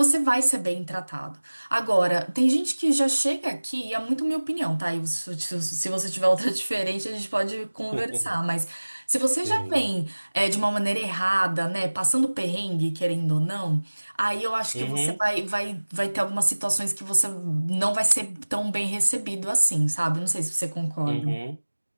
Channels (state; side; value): inverted; both; correlation -1.00